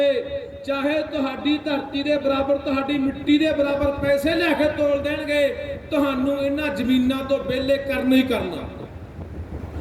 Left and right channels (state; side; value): identical; both; correlation 1.00